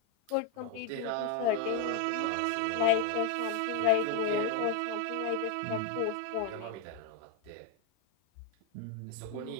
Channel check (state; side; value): different; both; correlation 0.01